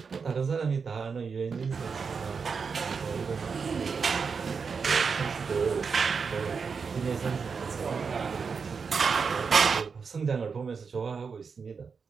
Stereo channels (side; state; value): left; quieter; 5.5 dB